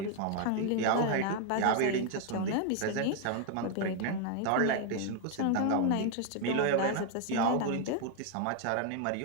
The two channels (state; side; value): different; both; correlation 0.00